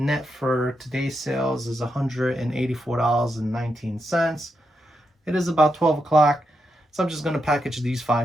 for today's sales is $184.19. It is about 12 o'clock. So I'm just going to package these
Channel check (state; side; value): normal; both; correlation 0.84